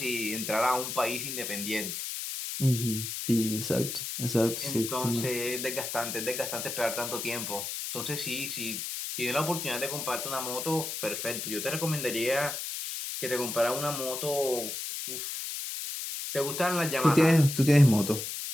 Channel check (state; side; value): noise; left; hiss, 5 dB below the sound